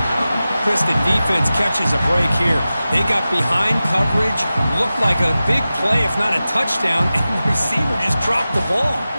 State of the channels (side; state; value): both; inverted; correlation -0.95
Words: Chris, the defense catches a break here. They got behind coverage. Looked like a big play, if not a touchdown, and the receiver just dropped the ball.